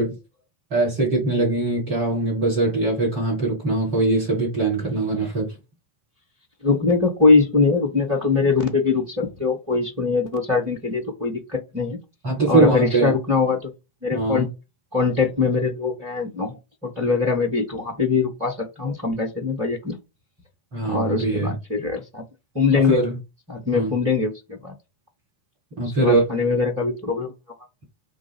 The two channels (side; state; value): left; late; 3.0 ms